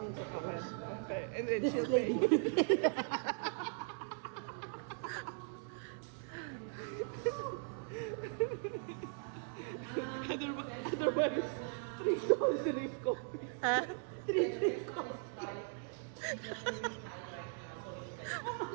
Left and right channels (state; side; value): silent; left; 52 dB below the other